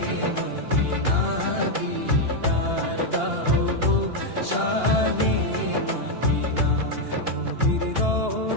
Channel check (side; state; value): left; late; 2.8 ms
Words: মদিনা, দিদার দাও গো শাহে মদিনা। নবীর